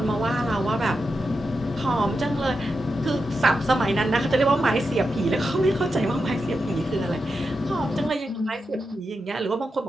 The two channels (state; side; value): normal; both; correlation 0.88